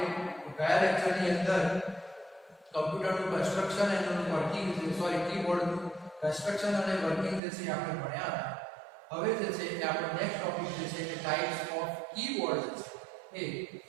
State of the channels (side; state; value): left; drops out; at 7.4 s